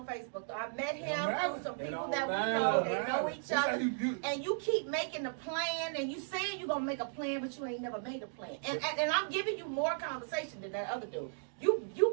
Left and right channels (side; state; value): left; silent; digital silence